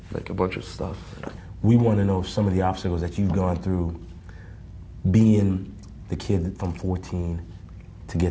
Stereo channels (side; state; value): both; identical; correlation 1.00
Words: like a bunch of stuff. We want to know some of the obstacles that you've gone through being the kid from 14 to